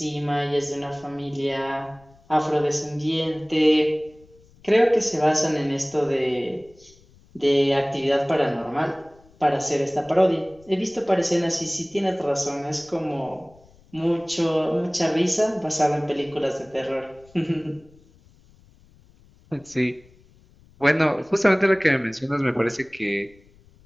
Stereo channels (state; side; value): noise; left; rumble, 28 dB below the sound